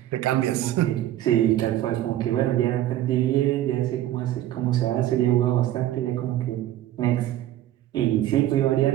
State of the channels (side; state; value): left; quieter; 13.4 dB